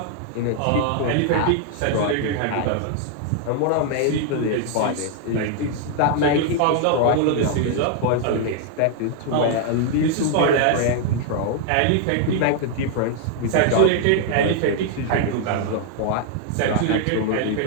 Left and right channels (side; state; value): both; different; correlation 0.00